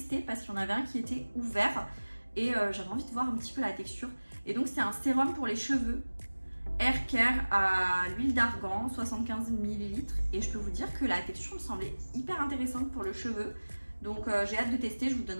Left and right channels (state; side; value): inverted; both; correlation -1.00